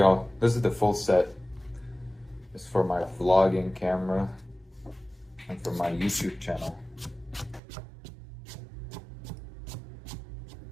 This is the full set. It's for my vlogging camera and for my YouTube channel.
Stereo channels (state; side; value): drops out; left; at 7.6 s